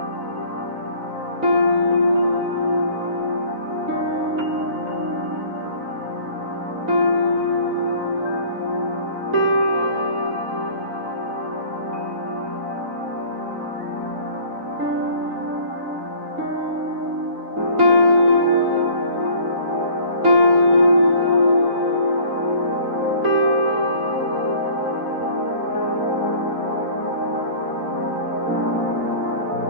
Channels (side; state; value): left; late; 3.9 ms